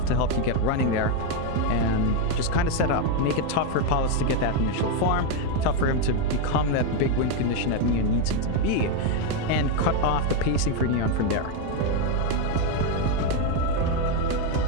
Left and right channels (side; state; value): both; different; correlation 0.02